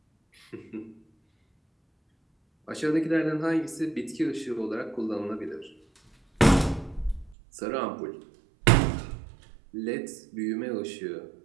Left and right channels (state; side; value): drops out; left; at 7.4 s